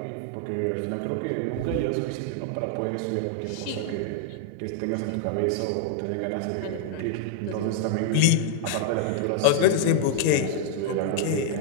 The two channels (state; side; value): different; both; correlation -0.01